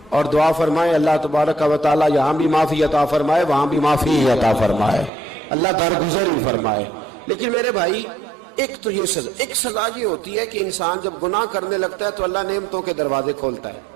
اور دعا فرمائے اللہ تبارک و تعالیٰ یہاں بھی معافی عطا فرمائے وہاں بھی معافی عطا فرمائے، اللہ درگزر ہی فرمائے. لیکن میرے بھائی ایک تو یہ سزا، ایک سزا یہ ہوتی ہے کہ انسان جب گناہ کرنے لگتا ہے تو اللہ نعمتوں کے دروازے کھولتا ہے،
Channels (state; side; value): drops out; left; at 5.1 s